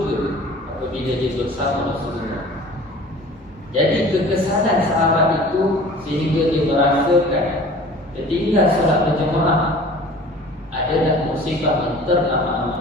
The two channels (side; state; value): both; normal; correlation 0.44